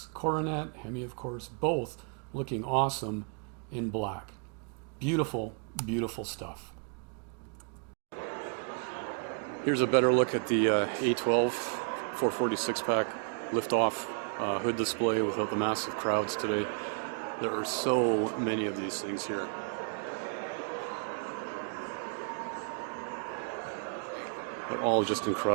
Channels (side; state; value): left; quieter; 38.7 dB